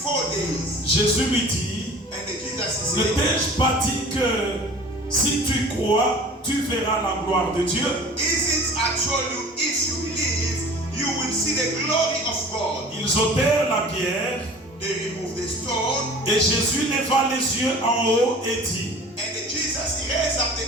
4 days. Jésus lui dit, And Jesus ne said, t'ai-je pas dit que si tu crois, tu verras la gloire de Dieu? isn't I told you, if you believe, you will see the glory of God. Ils ôtèrent la pierre, They removed the stone, et Jésus leva les yeux en haut et dit, and Jesus raised up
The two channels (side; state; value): both; normal; correlation 0.43